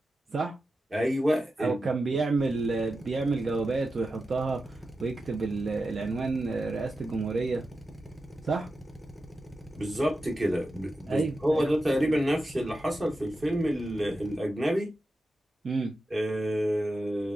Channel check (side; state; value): both; normal; correlation 0.91